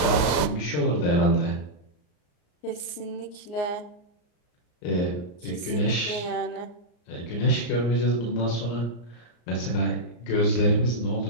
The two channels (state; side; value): late; right; 34 ms